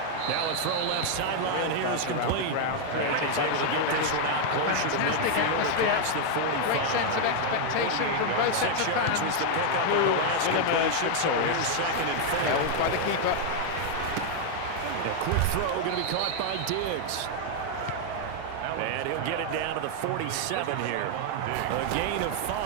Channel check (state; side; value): different; both; correlation 0.00